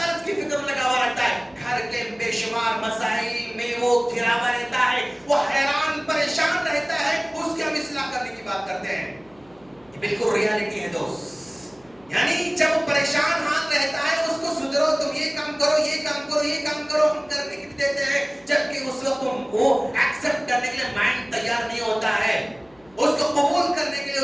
کی فکر میں لگا ہوا رہتا ہے. گھر کے بے شمار مسائل میں وہ گھرا ہوا رہتا ہے، وہ حیران پریشان رہتا ہے. اس کی ہم اصلاح کرنے کی بات کرتے ہیں. یہ بالکل ریالٹی ہے دوست. یعنی جب وہ پریشان حال رہتا ہے اس کو سدھرو، تم یہ کام کرو، یہ کام کرو، یہ کام کرو، ہم کرنے کے لیے دیتے ہیں، جبکہ اس وقت وہ ایکسپٹ کرنے کے لیے مائنڈ تیار نہیں ہوتا ہے. اس کو قبول کرنے کے لیے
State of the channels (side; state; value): left; noise; hum, 30 dB below the sound